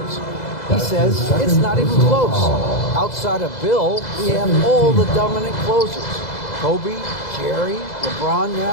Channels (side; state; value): right; late; 2.0 ms